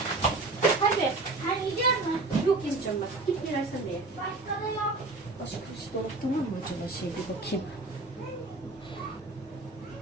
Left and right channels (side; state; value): left; quieter; 3.3 dB